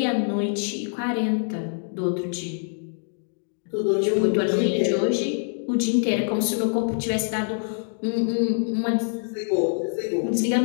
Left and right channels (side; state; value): right; silent; digital silence